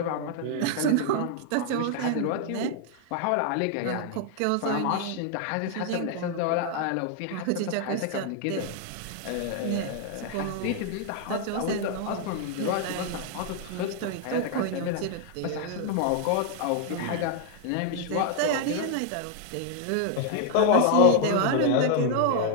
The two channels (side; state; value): both; different; correlation 0.00